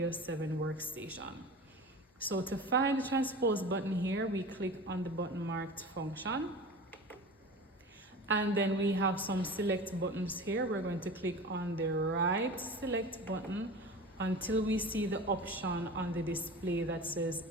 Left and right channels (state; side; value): normal; both; correlation 0.34